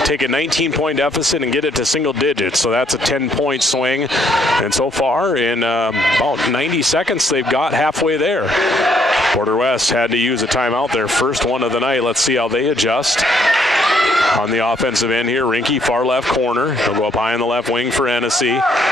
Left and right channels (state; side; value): normal; both; correlation 0.68